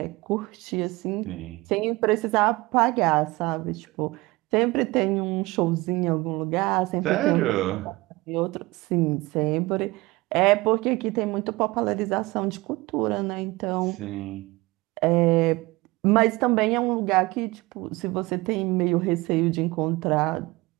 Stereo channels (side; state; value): left; quieter; 21.7 dB